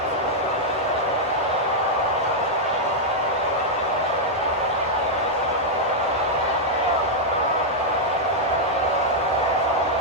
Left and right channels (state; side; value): normal; both; correlation -0.04